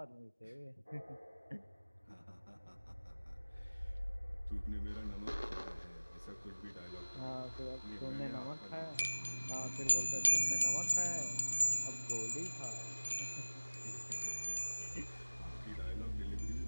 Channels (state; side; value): inverted; both; correlation -1.00